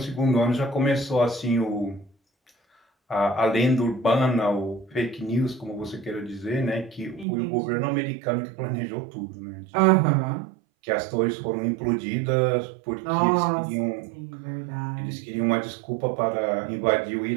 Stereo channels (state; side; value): drops out; left; at 7.2 s